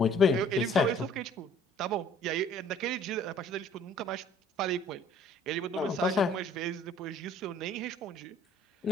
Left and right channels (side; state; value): both; normal; correlation 0.56